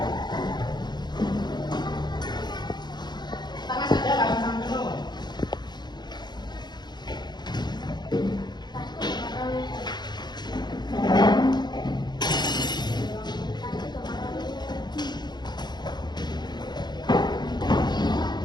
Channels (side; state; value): right; late; 0.21 ms